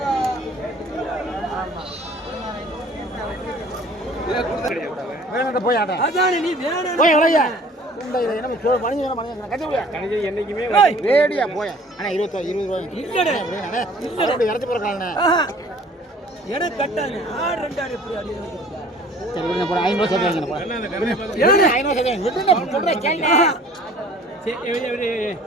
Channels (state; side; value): normal; both; correlation 0.51